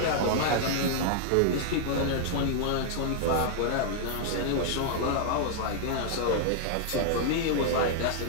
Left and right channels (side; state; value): both; different; correlation -0.01